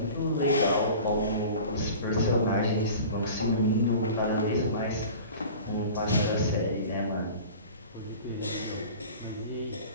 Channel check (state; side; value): inverted; both; correlation -0.40